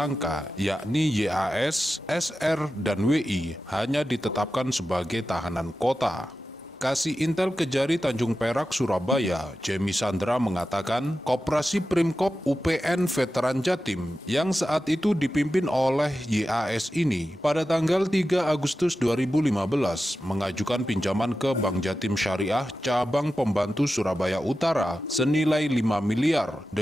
yakni YAS, SR, dan WI, hanya ditetapkan sebagai tahanan kota. Kasih Intel Kejari Tanjung Perak, Surabaya, Jemi Sandra mengatakan, Koperasi Primkop UPN Veteran Jatim yang saat itu dipimpin oleh YAS ini pada tanggal 3 Agustus 2015 mengajukan pinjaman ke Bank Jatim Syariah Cabang Pembantu Surabaya Utara senilai 5 miliar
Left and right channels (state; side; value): normal; both; correlation 0.92